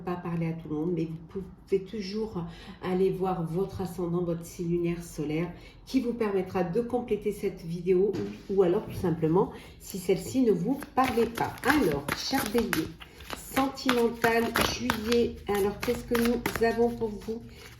parler à tout le monde, mais vous pouvez toujours aller voir votre ascendant, votre signe lunaire solaire qui vous permettra de compléter cette vidéo ou alors tout simplement si celle-ci ne vous parlait pas. Alors, cher Bélier, sentimental, juillet. Alors, qu'est-ce que nous avons pour vous,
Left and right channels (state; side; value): identical; both; correlation 1.00